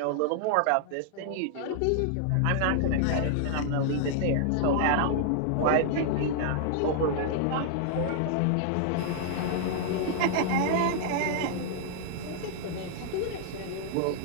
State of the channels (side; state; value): both; different; correlation -0.01